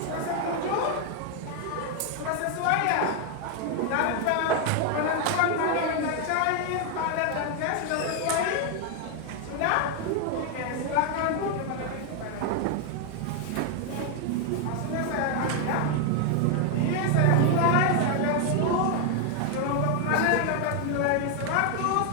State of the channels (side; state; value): both; different; correlation 0.00